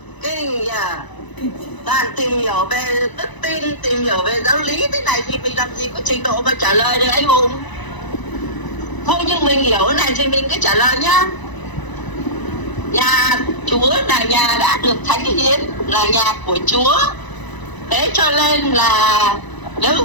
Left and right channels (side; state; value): right; late; 1.0 ms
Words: Kinh nhờ. Toàn tìm hiểu về đức tin, tìm hiểu về giáo lý thế này thì mình làm gì có trình độ mà trả lời được anh Hùng. Thôi nhưng mình hiểu cái này thì mình cứ trả lời nhá. Nhà Chúa là nhà đã được thánh hiến, là nhà của Chúa. Thế cho nên là